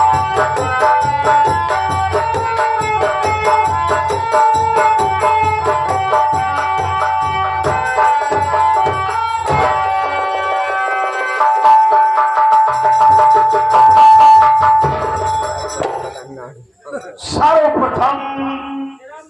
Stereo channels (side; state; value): both; identical; correlation 1.00